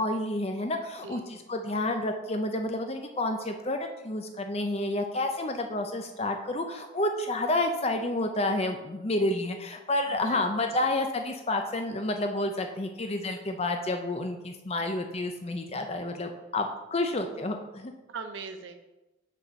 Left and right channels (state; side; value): normal; both; correlation 0.17